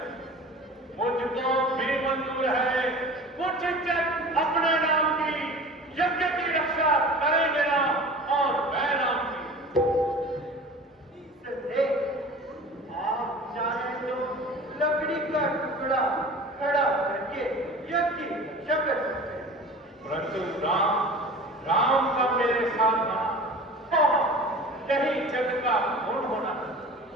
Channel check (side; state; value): both; normal; correlation 0.39